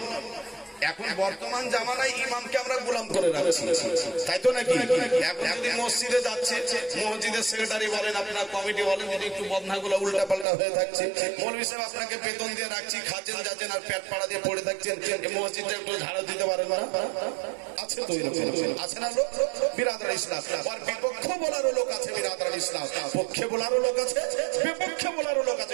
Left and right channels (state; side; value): drops out; left; at 10.5 s